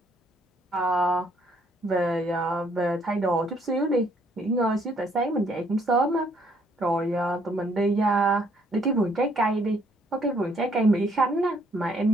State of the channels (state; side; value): normal; both; correlation 0.67